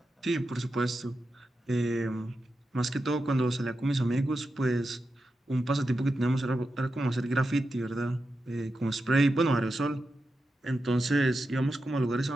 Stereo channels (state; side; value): normal; both; correlation 0.89